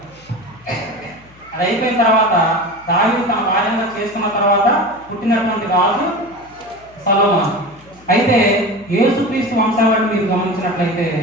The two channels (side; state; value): left; noise; hum, 26 dB below the sound